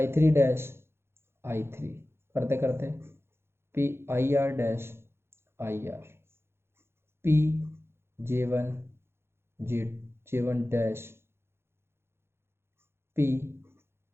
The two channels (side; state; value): left; late; 0.12 ms